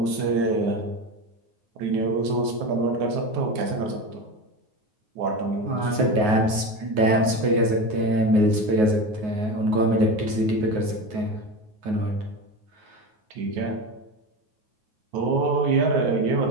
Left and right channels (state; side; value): late; left; 9.4 ms